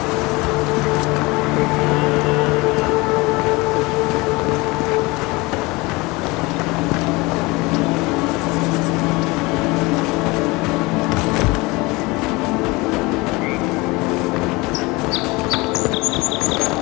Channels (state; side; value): quieter; right; 23.7 dB